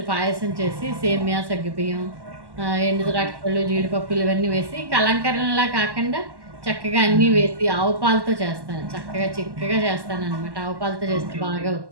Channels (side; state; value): left; late; 1.1 ms